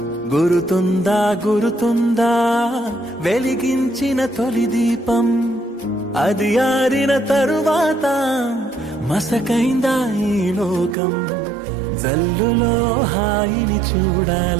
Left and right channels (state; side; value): drops out; left; at 11.0 s